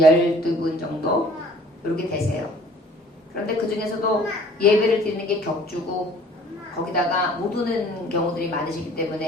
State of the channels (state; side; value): normal; both; correlation 0.52